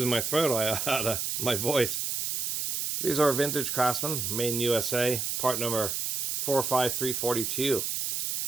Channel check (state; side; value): noise; right; hiss, 1 dB below the sound